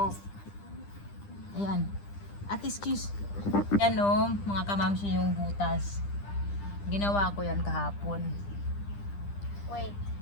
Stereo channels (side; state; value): right; late; 10 ms